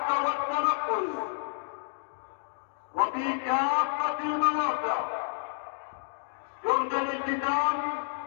والتنقل وفي كافه المواقع يرجى الالتزام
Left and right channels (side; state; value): right; silent; digital silence